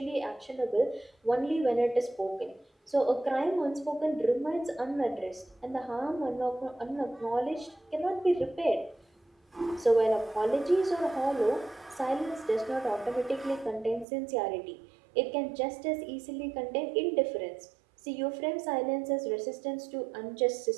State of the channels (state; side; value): drops out; left; at 14.1 s